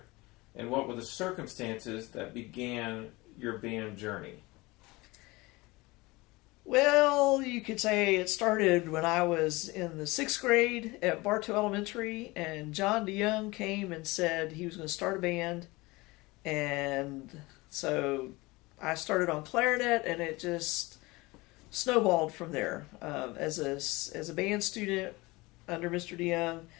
and what were the circumstances that began your band journey? Well, you could say it started when I was in the 6th grade at Bartow Elementary, and Jon Eckman came and said he was going to start a band, and so I started on clarinet, and it just snowballed from there. As a band student under Mr. DeYoung,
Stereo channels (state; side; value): quieter; right; 22.5 dB